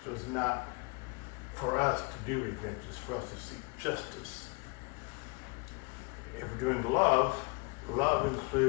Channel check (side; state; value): right; quieter; 30.2 dB